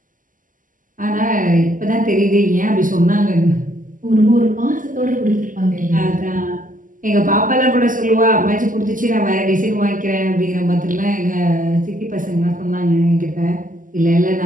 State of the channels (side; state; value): left; late; 0.38 ms